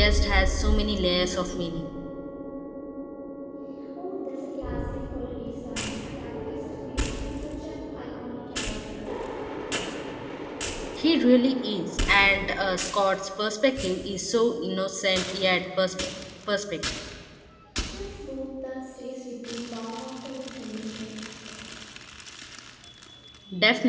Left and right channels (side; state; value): both; identical; correlation 1.00